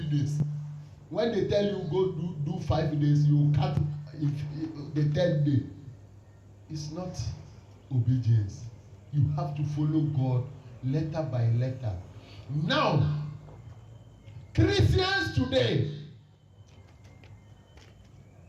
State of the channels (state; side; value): identical; both; correlation 1.00